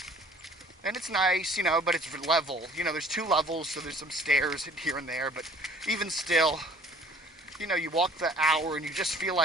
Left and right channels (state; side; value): normal; both; correlation 0.53